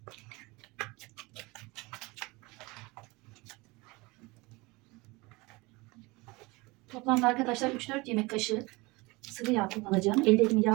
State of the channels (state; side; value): quieter; left; 24.1 dB